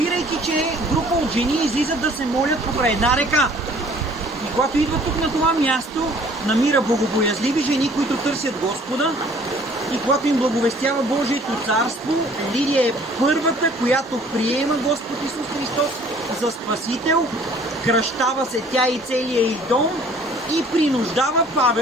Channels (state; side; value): normal; both; correlation 0.54